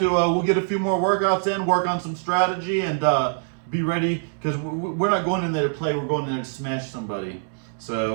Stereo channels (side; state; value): left; silent; digital silence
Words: We'll get a few more workouts in, work on some strategy, and be ready because we're not going in there to play. We're going in there to smash somebody.